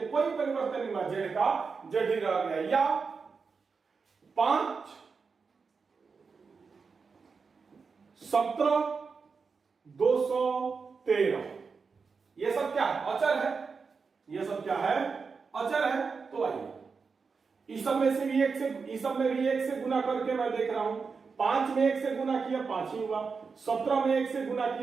कोई परिवर्तन नहीं हुआ, z का z ही रह गया। या 5 17 213 ये सब क्या है अचर है, ये सब क्या है अचर है। तो आइए इस सब में से भी 1 से, इस सब में भी 1 से गुना करके मैं देख रहा हूं, 5 में 1 से गुना किया 5 ही हुआ, 17 में 1 से गुना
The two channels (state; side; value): quieter; left; 5.1 dB